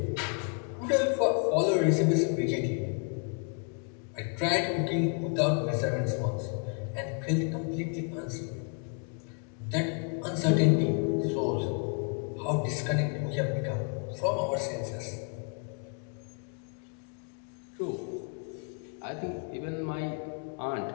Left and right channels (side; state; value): right; quieter; 38.0 dB